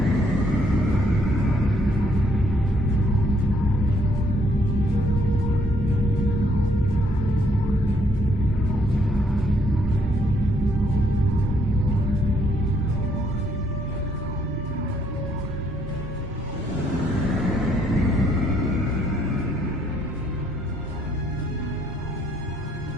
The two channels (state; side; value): normal; both; correlation 0.69